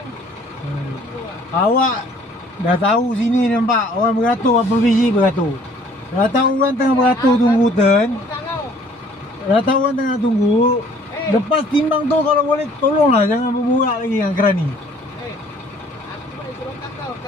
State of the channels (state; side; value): normal; both; correlation 0.57